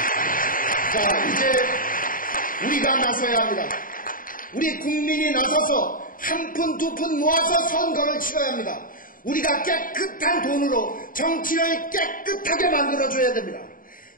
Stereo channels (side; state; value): right; late; 0.40 ms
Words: 자, 이제 우리가 나서야 합니다. 우리 국민이 나서서 한 푼, 두 푼 모아서 선거를 치러야 합니다. 우리가 깨끗한 돈으로 정치를 깨끗하게 만들어줘야 됩니다.